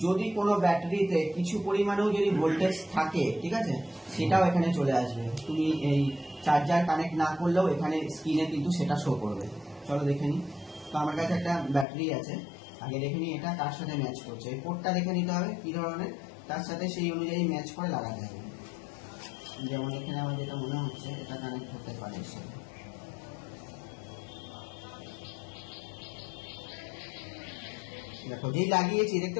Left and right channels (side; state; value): right; drops out; at 11.9 s